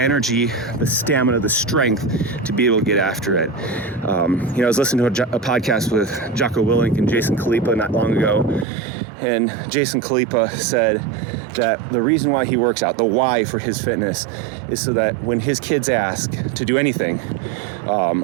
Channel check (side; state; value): left; drops out; at 8.7 s